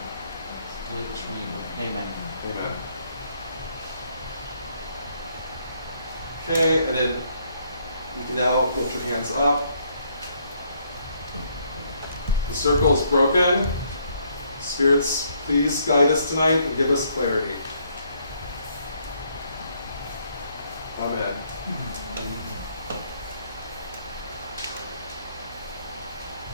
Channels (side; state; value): both; inverted; correlation -0.70